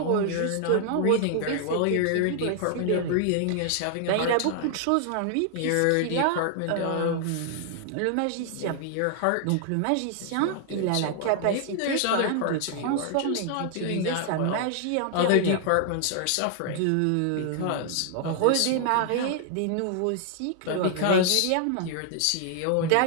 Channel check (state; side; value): different; both; correlation 0.00